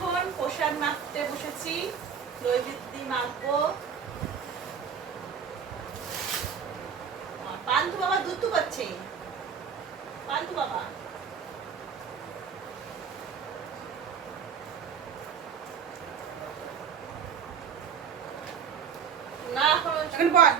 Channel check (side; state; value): left; quieter; 7.2 dB